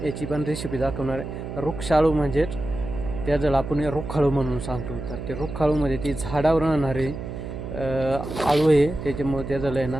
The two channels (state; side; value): noise; right; hum, 8 dB below the sound